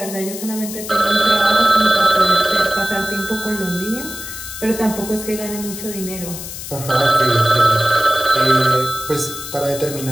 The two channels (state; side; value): noise; left; hiss, 10 dB below the sound